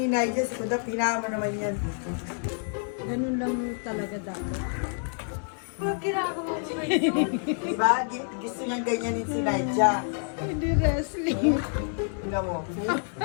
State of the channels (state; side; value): silent; right; 57 dB below the other